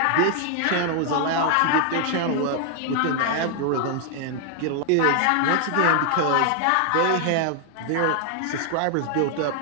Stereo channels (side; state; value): both; different; correlation 0.00